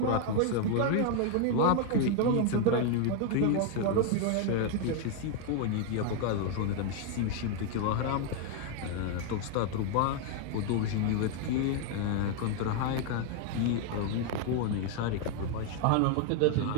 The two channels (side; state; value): both; different; correlation 0.01